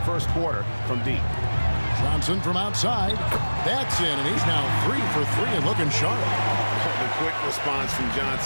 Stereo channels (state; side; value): inverted; both; correlation -1.00